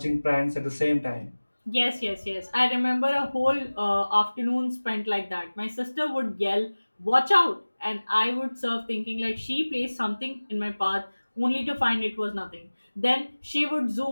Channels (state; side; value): inverted; both; correlation -1.00